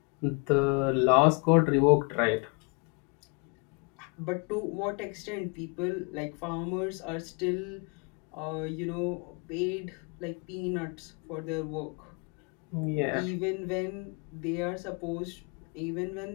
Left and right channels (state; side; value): quieter; right; 33.7 dB